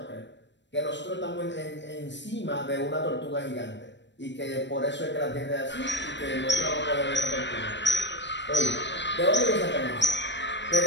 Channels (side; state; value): right; late; 0.52 ms